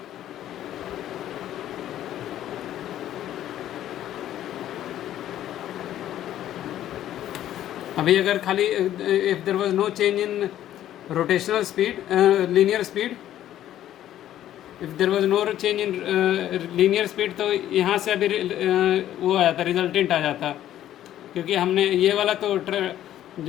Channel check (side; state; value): right; quieter; 12.2 dB